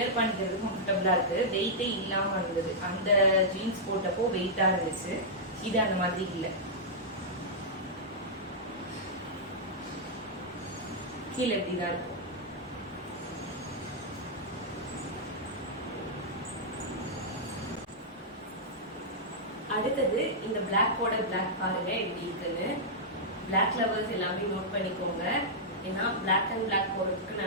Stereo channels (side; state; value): both; normal; correlation -0.09